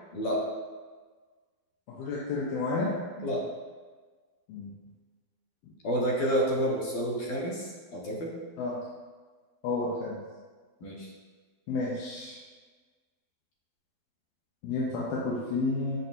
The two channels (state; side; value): late; right; 12 ms